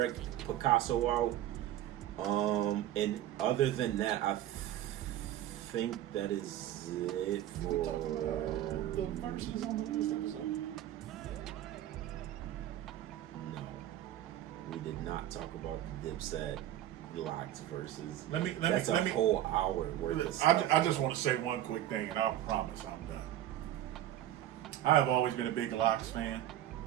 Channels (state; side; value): quieter; left; 12.6 dB